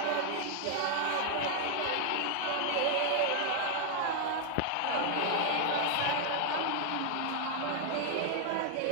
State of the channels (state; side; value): different; both; correlation 0.00